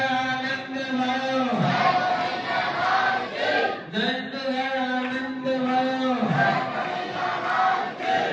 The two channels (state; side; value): identical; both; correlation 1.00